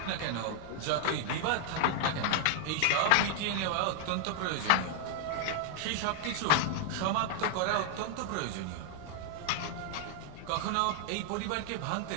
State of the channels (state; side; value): different; both; correlation 0.00